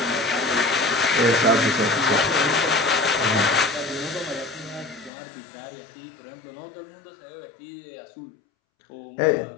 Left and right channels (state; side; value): drops out; right; at 5.1 s